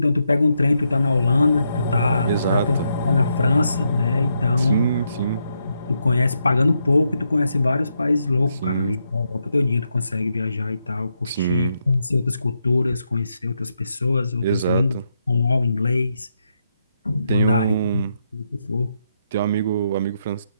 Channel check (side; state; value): both; inverted; correlation -0.80